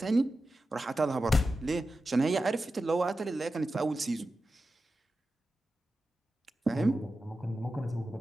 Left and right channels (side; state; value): both; normal; correlation 0.92